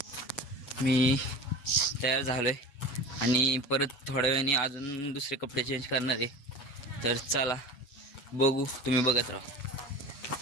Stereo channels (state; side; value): late; right; 7.2 ms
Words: मी तयार झालो आहे, आणि परत थोड्या वेळाने अजून दुसरे कपडे चेंज करणार आहे. तर चला बघू, तुम्ही बघत राहा.